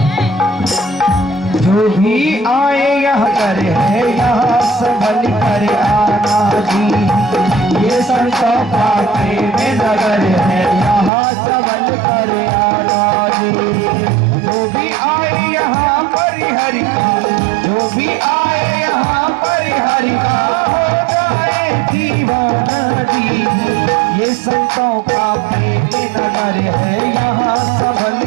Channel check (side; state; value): left; drops out; at 11.1 s